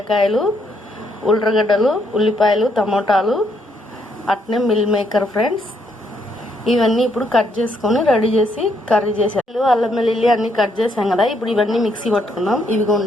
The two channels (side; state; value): both; normal; correlation 0.73